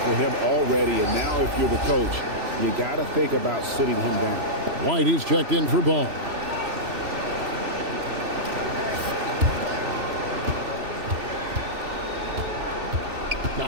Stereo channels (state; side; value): late; left; 3.0 ms